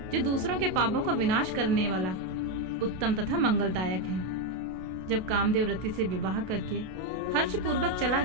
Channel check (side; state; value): left; late; 32 ms